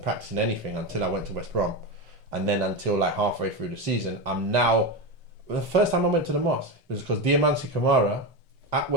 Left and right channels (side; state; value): both; normal; correlation 0.16